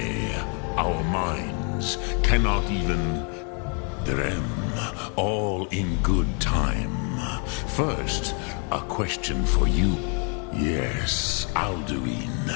our minds, cannot even... Drem, all in good time. First, a question for you. Yes,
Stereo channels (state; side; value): quieter; right; 38.4 dB